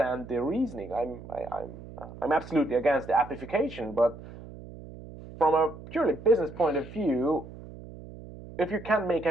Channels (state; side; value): noise; right; hum, 15 dB below the sound